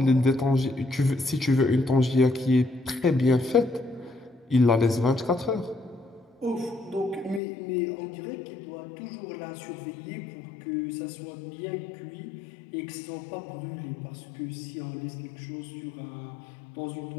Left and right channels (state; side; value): drops out; right; at 7.4 s